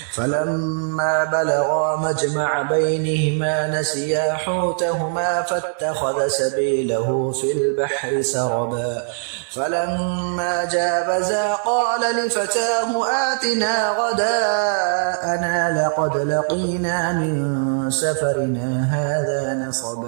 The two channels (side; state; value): left; silent; digital silence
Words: فلما بلغا مجمع بينهما نسيا حوتهما فاتخذ سبيله في البحر سربا فلما جاوزا قال لفتاه آتنا غداءنا لقد لقينا من سفرنا هذا